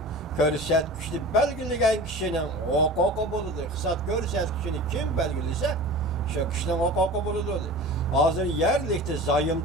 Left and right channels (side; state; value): both; normal; correlation 0.36